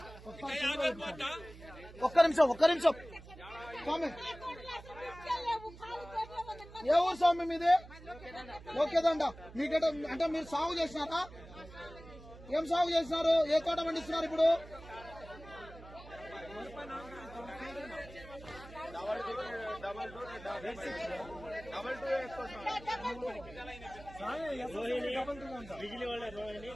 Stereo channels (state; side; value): noise; right; hum, 17 dB below the sound